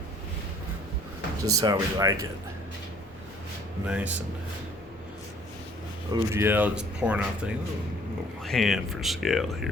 Just how we like it. Nice and OGL just pouring out things. A little hand for scale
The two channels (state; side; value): normal; both; correlation 0.57